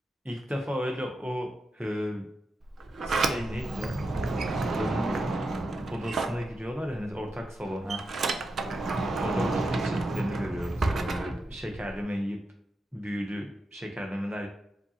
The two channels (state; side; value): normal; both; correlation 0.87